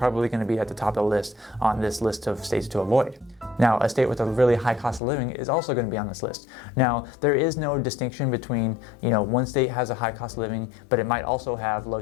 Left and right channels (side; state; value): right; drops out; at 5.0 s